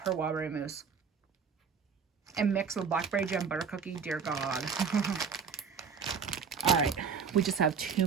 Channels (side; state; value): left; quieter; 6.1 dB